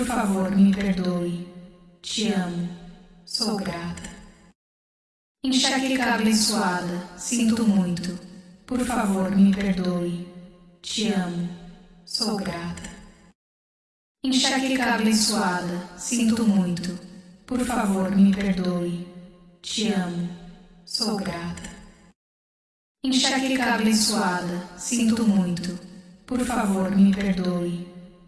favor, me perdoe. Te amo. Sou grata. Enxaqueca abençoada, sinto muito. Por favor, me perdoe. Te amo. Sou grata. Enxaqueca abençoada, sinto muito. Por favor, me perdoe. Te amo. Sou grata. Enxaqueca abençoada, sinto muito. Por favor, me perdoe.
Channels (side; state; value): both; identical; correlation 1.00